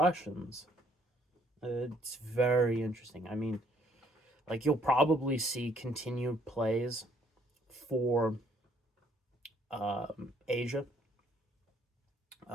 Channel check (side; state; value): both; normal; correlation 0.65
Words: It's very interesting. I mean, like you'll probably see continued plays for Asia,